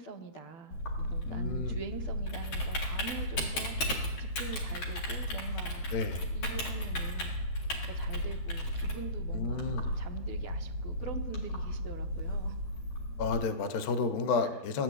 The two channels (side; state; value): right; late; 13 ms